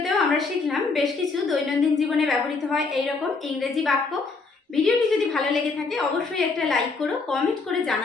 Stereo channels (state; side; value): quieter; right; 4.1 dB